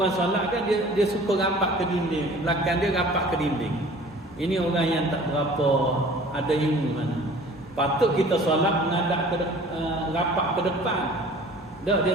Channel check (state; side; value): normal; both; correlation 0.47